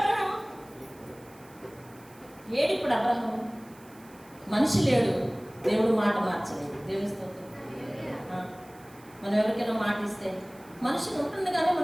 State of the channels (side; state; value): right; noise; hiss, 25 dB below the sound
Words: అబ్రహాము. మనిషి లేడు, దేవుడు మాట మార్చలేదు. దేవుని స్తోత్రం. మనం ఎవరికైనా మాట ఇస్తే మనిషి ఉంటుంది, కానీ